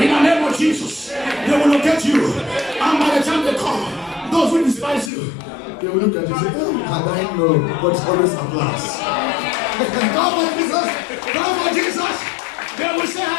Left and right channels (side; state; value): right; drops out; at 5.1 s